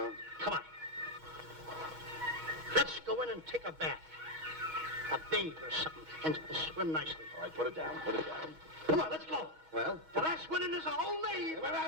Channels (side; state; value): left; late; 6.3 ms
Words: Come on. Let's go in and take a bath. A bathe or something, and swim nicely. All right, put it down. Come on, let's go. Well? The last one in is a whole name. Wait